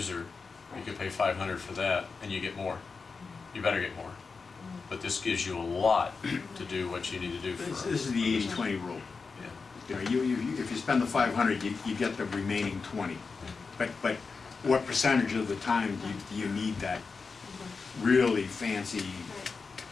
You could pay $500 for that, and you get more. You better get more. But this gives you a lot to do what you need to do for. This is the 80-20 rule. Yeah. You know, if you spend the 500, you get the remaining 20. But what percentage of the time do you need that really fancy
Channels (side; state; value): right; quieter; 4.7 dB